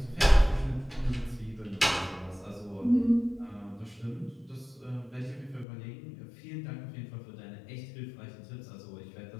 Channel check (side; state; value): right; drops out; at 5.7 s